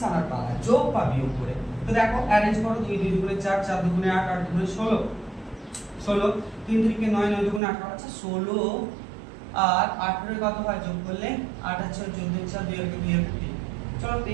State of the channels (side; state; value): left; drops out; at 7.6 s